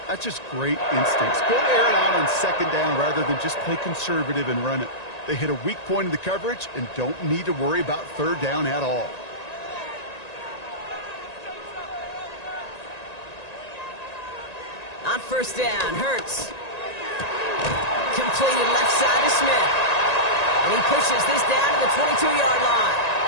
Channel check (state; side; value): late; right; 1.9 ms